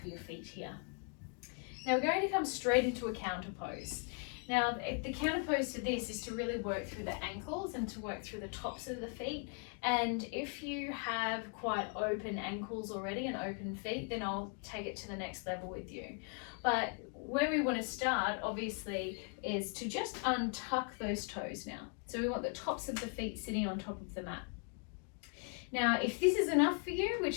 your feet here. Now we're going to come straight into a counter pose. Now the counter pose to this is to really work through the ankles and to work through the tops of the feet. And if you have quite open ankles already and open feet, then I'll take it to the next level with you. But where we want to start, obviously, is to just untuck those toes now. So we want the tops of the feet sitting on top of the mat. Now, if this is enough for you,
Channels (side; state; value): right; quieter; 39.5 dB